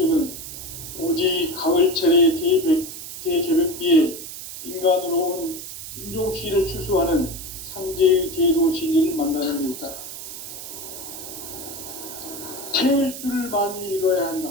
오직 가을철의 대개벽기에 인간으로 온 인종시를 추수하는 상제의 대도 진리를 만나는 데 있다. 태일주를 많이 읽어야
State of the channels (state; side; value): noise; right; hiss, 10 dB below the sound